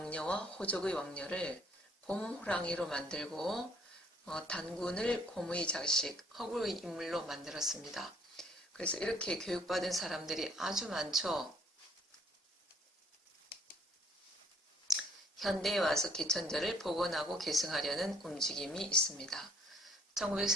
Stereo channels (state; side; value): normal; both; correlation 0.63